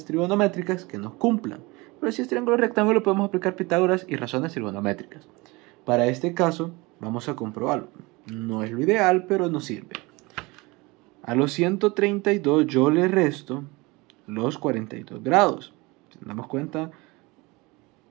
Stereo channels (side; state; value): left; quieter; 24.2 dB